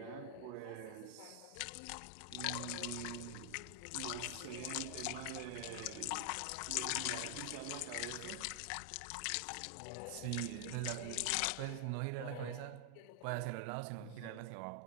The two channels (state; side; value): different; both; correlation 0.00